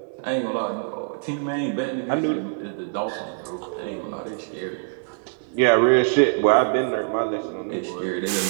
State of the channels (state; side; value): silent; left; 58 dB below the other